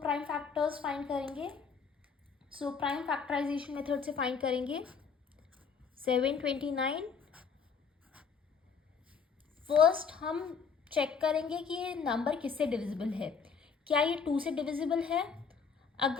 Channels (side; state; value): right; quieter; 5.9 dB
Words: factors find करेंगे. So prime factorisation method से find करेंगे 729. First हम check करेंगे कि ये नंबर किससे डिविजिबल है. क्या ये 2 से डिविजिबल है?